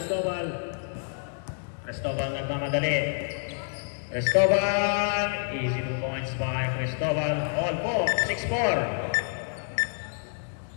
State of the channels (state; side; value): silent; right; digital silence